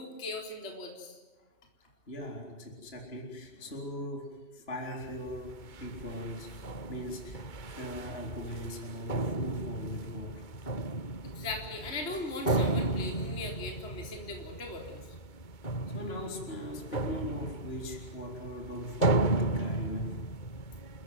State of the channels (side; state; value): right; late; 2.3 ms